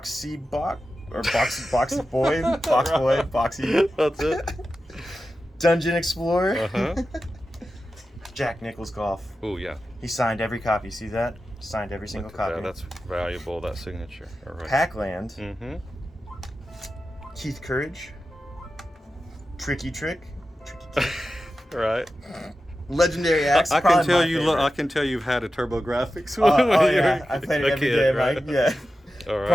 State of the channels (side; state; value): both; normal; correlation 0.92